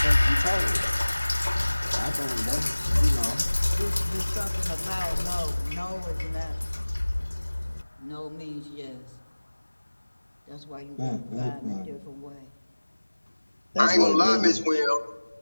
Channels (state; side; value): inverted; both; correlation -1.00